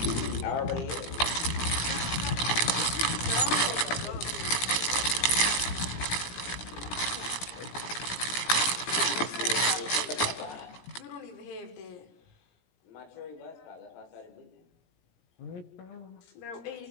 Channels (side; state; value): right; late; 17 ms